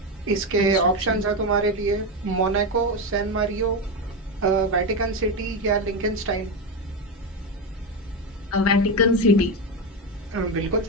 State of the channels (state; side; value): normal; both; correlation 0.13